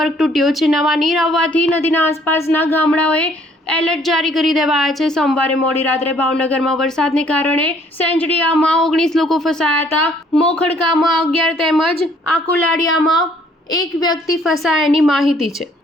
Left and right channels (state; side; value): normal; both; correlation 0.62